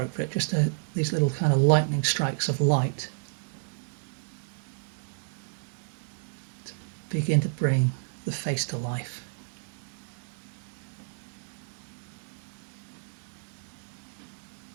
Just these little kind of lightning strikes of light to begin to bring the face to life.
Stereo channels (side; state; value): left; silent; digital silence